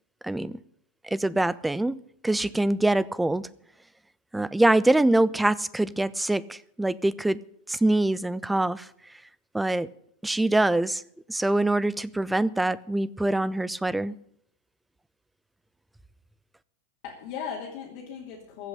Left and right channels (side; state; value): both; normal; correlation 0.97